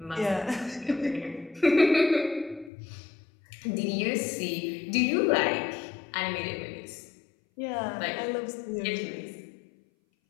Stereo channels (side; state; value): right; drops out; at 2.7 s